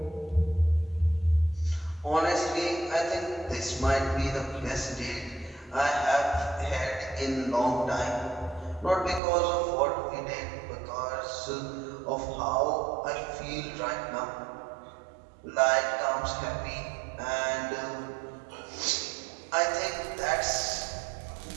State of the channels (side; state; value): left; drops out; at 9.2 s